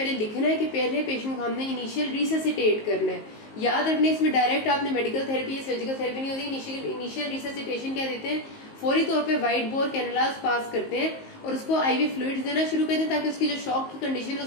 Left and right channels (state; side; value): late; right; 19 ms